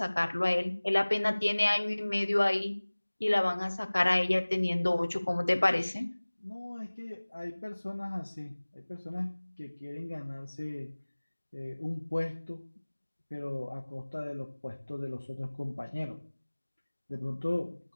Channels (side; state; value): both; inverted; correlation -1.00